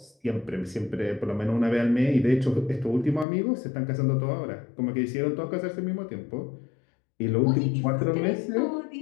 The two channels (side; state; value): right; drops out; at 3.2 s